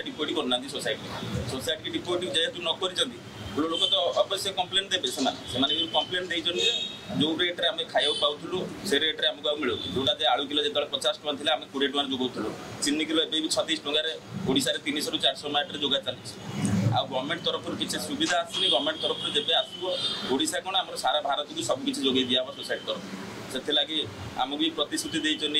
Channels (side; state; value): both; identical; correlation 1.00